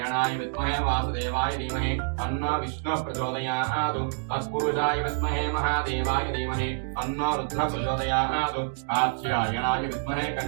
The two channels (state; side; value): silent; left; digital silence